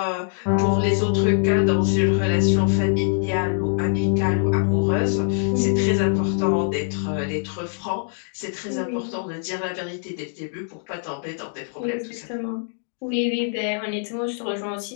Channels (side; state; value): right; silent; digital silence